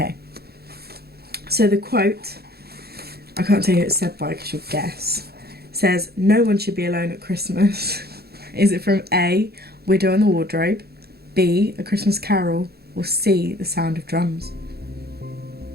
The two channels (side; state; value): left; late; 0.46 ms